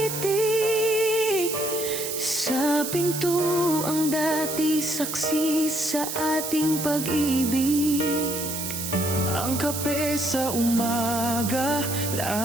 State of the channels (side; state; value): right; noise; hiss, 5 dB below the sound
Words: sa Sa pinto ang dati saksi sa ating pag-ibig. Ang kape sa umaga,